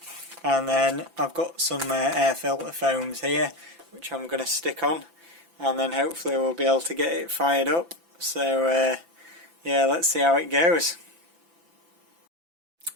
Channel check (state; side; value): late; left; 5.9 ms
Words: And then I've got some air filter foams here which I'm going to stick on, and then hopefully we'll be able to get it fired up. So yeah, let's see how it goes.